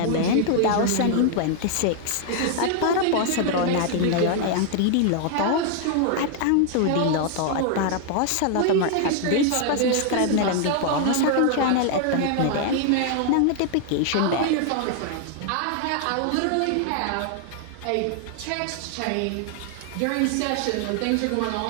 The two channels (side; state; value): both; different; correlation 0.00